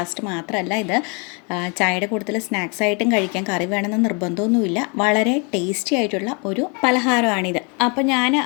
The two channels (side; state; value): right; quieter; 33.8 dB